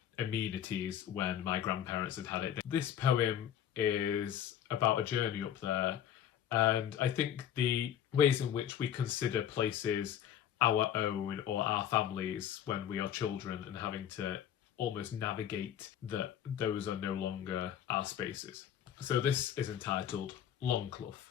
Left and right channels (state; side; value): quieter; right; 10.1 dB